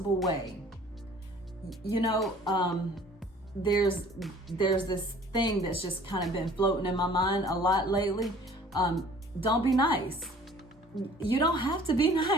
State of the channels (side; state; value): both; normal; correlation 0.51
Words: way. You know, there's this thing that's just kind of been floating in my mind a lot lately. Don't be nice. You don't have to be